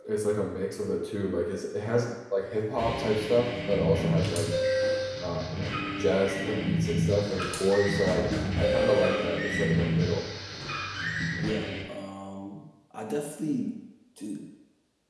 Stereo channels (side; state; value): both; identical; correlation 1.00